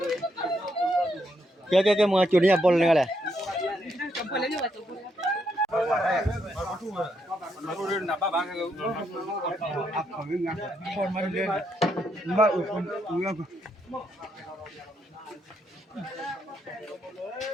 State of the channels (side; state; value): both; normal; correlation 0.78